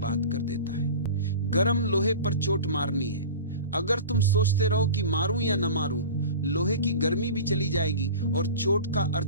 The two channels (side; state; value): both; inverted; correlation -0.35